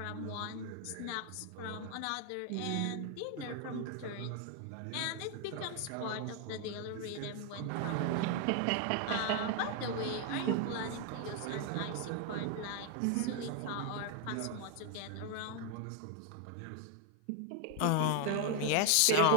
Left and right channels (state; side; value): different; both; correlation 0.00